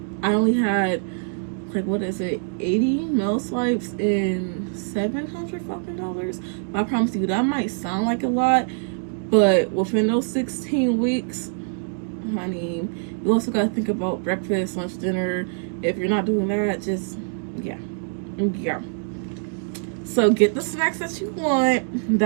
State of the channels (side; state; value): left; silent; digital silence